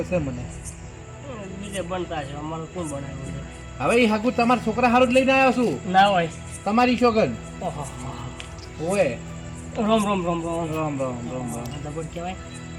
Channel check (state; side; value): identical; both; correlation 1.00